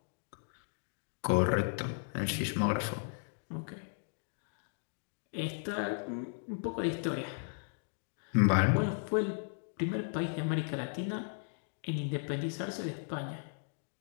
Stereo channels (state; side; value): silent; right; digital silence